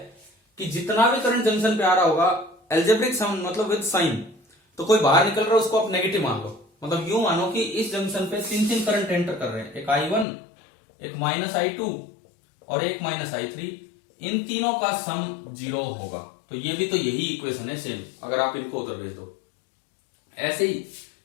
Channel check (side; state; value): right; drops out; at 10.2 s